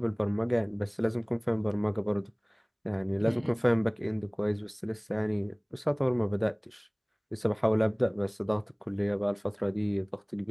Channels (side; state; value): both; identical; correlation 1.00